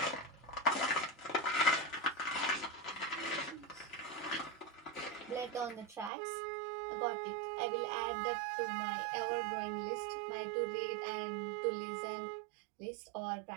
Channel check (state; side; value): drops out; left; at 6.1 s